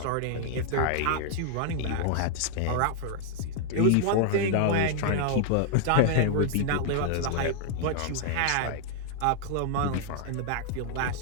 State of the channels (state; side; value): different; both; correlation 0.00